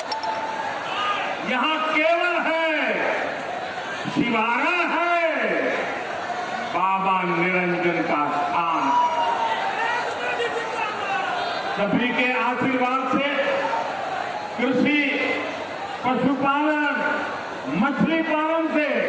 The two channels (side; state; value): both; identical; correlation 1.00